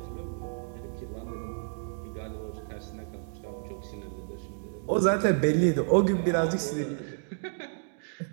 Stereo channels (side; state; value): left; silent; digital silence